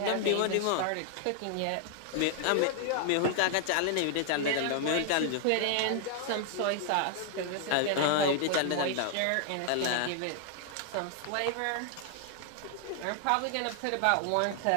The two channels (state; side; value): different; both; correlation 0.00